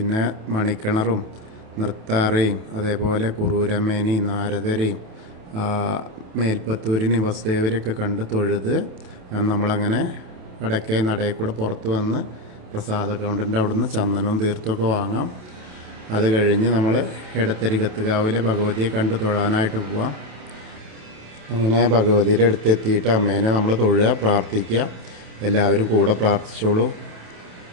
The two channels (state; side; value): late; left; 28 ms